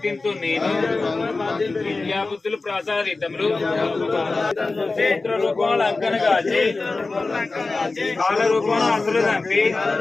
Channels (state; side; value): quieter; right; 3.6 dB